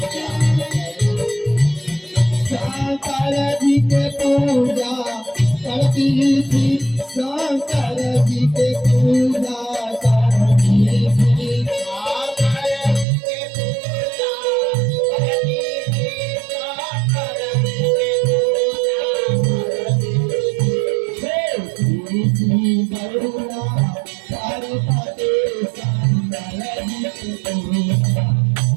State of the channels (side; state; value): left; drops out; at 13.1 s